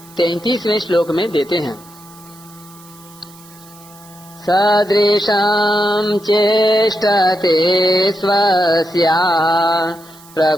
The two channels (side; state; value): right; noise; hiss, 23 dB below the sound